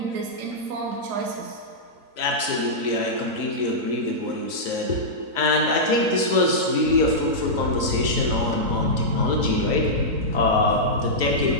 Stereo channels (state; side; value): late; left; 4.0 ms